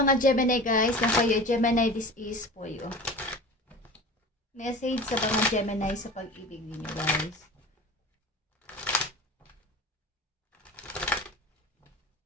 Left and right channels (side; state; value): both; normal; correlation 0.36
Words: Gemini guys, na kayo Gemini, this is for you. Message sa mga Gemini sa pag-ibig ninyo guys.